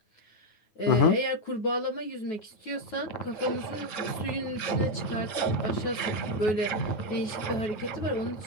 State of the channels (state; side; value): late; right; 9.5 ms